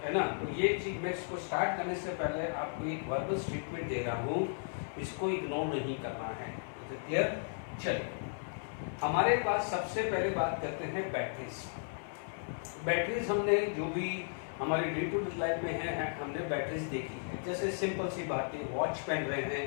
है ना। तो ये चीज मैं इसको स्टार्ट करने से पहले आपको एक वर्बल स्टेटमेंट दे रहा हूँ, इसको इग्नोर नहीं करना है। क्लियर? चलिए, हमारे पास सबसे पहले बात करते हैं बैटरीज। बैटरीज हमने जो भी हमारी डे टू डे लाइफ में है हमने बैटरीज देखी है। जैसे सिंपल सी बात है, वॉच पहन रहे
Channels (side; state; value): right; silent; 54 dB below the other